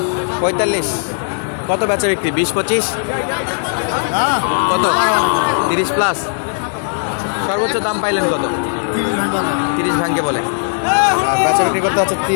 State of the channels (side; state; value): right; silent; digital silence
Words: 45। কত বেচা বিক্রি? 20-25? কত? 30+? সর্বোচ্চ দাম পাইলেন কত? 30 ভাঙ্গে বলে, আর বেচা বিক্রি করতে হচ্ছে